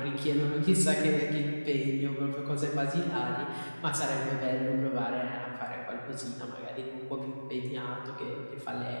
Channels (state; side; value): inverted; both; correlation -1.00